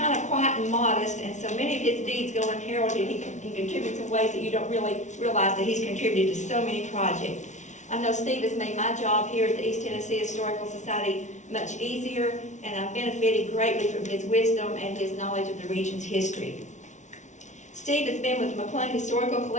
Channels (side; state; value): right; late; 0.35 ms